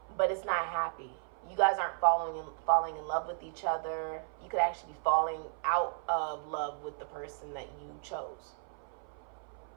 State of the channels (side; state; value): left; silent; 55 dB below the other